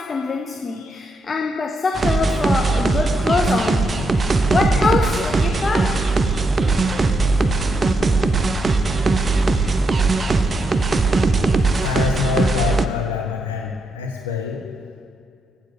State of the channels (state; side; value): normal; both; correlation 0.81